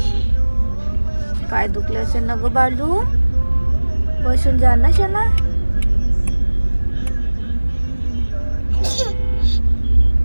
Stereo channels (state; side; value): inverted; both; correlation -1.00